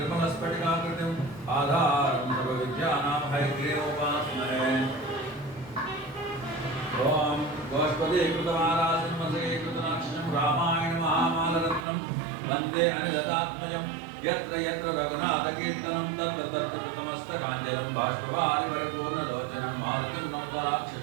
आधारं सर्वविद्यानां हयग्रीवोपास्महे। ॐ गोष्पदीकृतमालासिंहसीकृतनाक्षं रामायण महामालरत्नं वन्दे अनिलतात्मजं यत्र यत्र रघुनाथकीर्तनं तत्र तत्र कृतमस्तकाञ्जलं बाष्पवारि परिपूर्णलोचनं मारुतिं नमत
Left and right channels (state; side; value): drops out; left; at 11.9 s